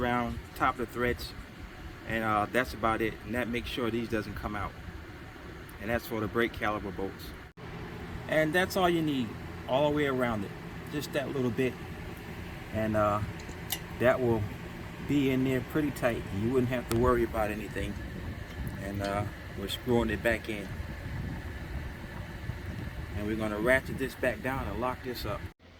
top of the threads, and that's about it. And that makes sure these doesn't come out. And that's for the brake caliper bolts. And that's all you need, all the way around it, just that little bit, and that will be in there pretty tight. You wouldn't have to worry about anything. And we're screwing it back in, and we're going to ratchet this back down and lock this up.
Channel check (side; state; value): both; identical; correlation 1.00